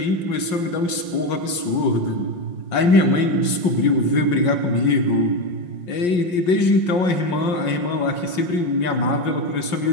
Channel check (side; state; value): right; late; 5.6 ms